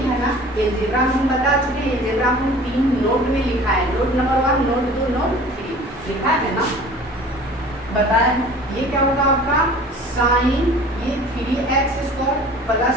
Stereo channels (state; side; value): normal; both; correlation 0.45